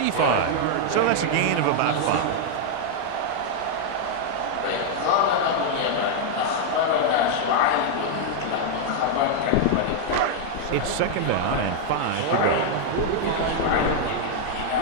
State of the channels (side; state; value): both; different; correlation 0.00